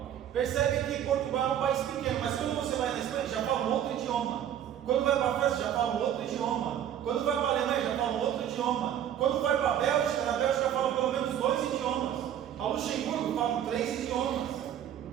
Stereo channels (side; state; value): left; quieter; 10.3 dB